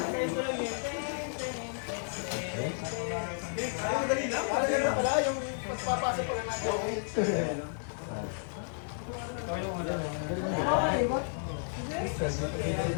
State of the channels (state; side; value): silent; right; digital silence